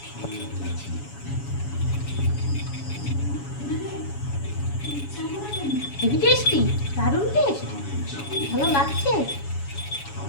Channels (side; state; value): right; late; 7.1 ms